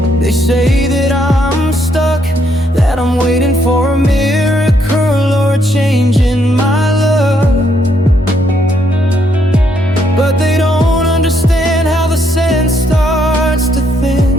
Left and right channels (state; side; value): normal; both; correlation 0.73